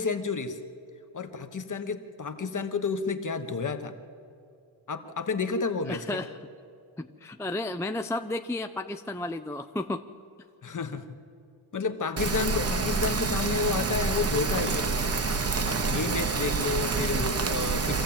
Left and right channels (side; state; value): both; normal; correlation 0.18